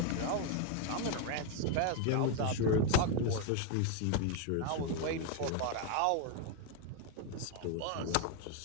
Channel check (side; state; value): both; different; correlation 0.01